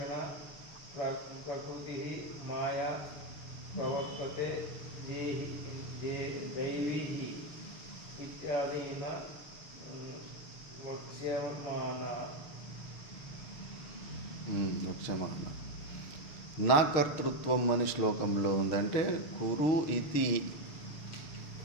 ప్రకృతిః మాయా ప్రవర్తతే దైవీః ఇత్యాదినా వక్ష్యమాణా. నా కర్తృత్వం అని శ్లోకంలో ఉందంటే కురు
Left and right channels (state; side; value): late; right; 6.4 ms